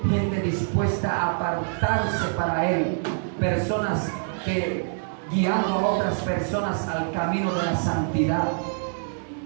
gente dispuesta a apartarse para Él, personas que guiando a otras personas al camino de la santidad,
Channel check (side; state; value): left; silent; 62 dB below the other